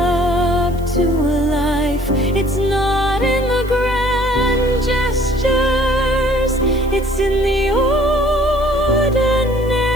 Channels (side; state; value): left; noise; hiss, 25 dB below the sound